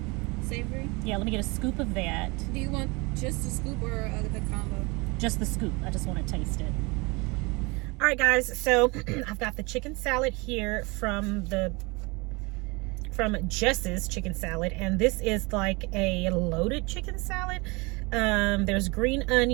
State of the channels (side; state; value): left; quieter; 26.8 dB